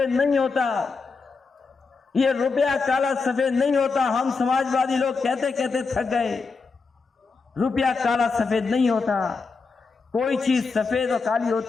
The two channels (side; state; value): right; quieter; 4.5 dB